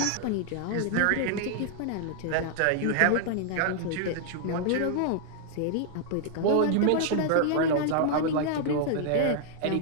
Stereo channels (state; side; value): different; both; correlation 0.00